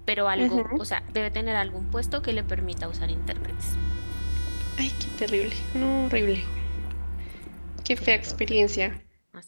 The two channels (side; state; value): both; inverted; correlation -1.00